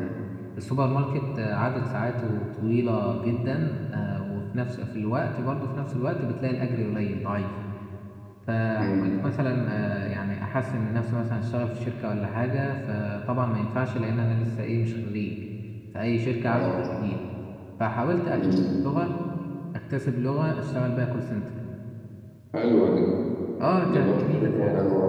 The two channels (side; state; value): both; identical; correlation 1.00